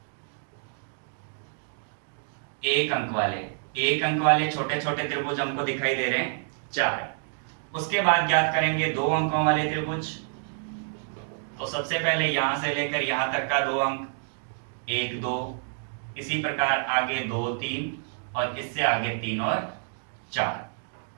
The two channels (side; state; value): left; silent; digital silence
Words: एक अंक वाले छोटे छोटे त्रिभुज हमको दिखाई दे रहे हैं 4। उसके बाद ज्ञात करेंगे 2 अंकों वाले त्रिभुज। तो सबसे पहले यहां से लेकर यहां तक का 2 अंक, 1, 2। इसी प्रकार आगे 2, 3 और इससे आगे 3 और 4।